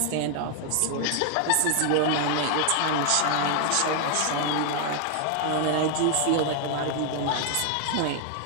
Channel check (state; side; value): different; both; correlation 0.00